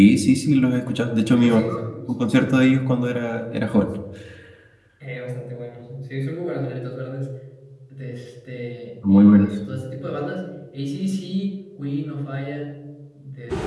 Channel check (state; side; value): identical; both; correlation 1.00